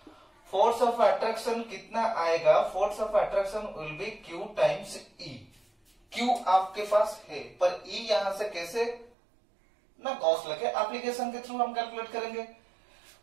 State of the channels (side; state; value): left; drops out; at 9.1 s